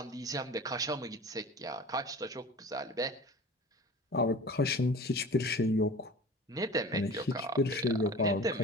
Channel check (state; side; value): normal; both; correlation 0.40